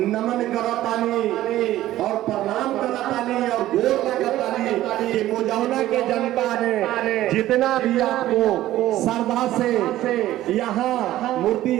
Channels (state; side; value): quieter; left; 14.4 dB